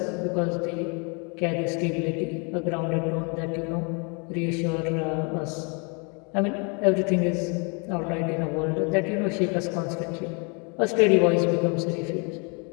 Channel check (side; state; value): right; quieter; 34.1 dB